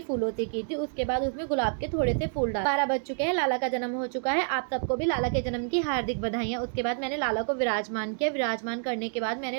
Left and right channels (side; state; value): left; silent; digital silence